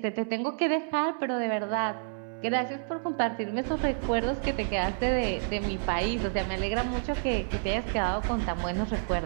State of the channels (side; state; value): left; silent; 58 dB below the other